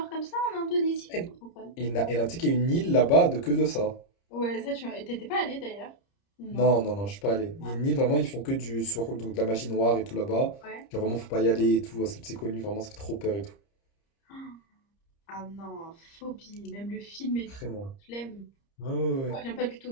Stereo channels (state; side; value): late; right; 30 ms